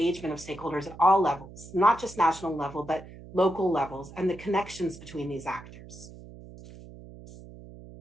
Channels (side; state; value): right; noise; hum, 17 dB below the sound